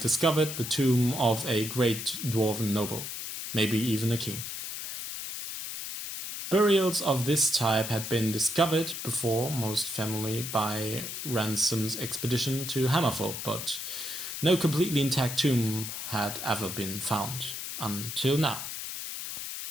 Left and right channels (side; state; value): left; noise; hiss, 6 dB below the sound